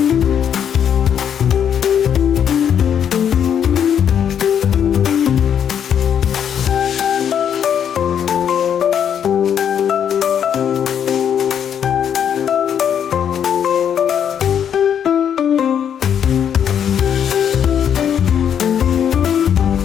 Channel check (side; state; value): right; quieter; 8.6 dB